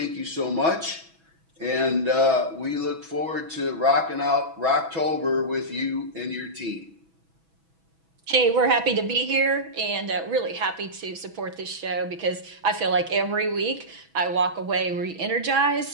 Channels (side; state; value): left; late; 6.1 ms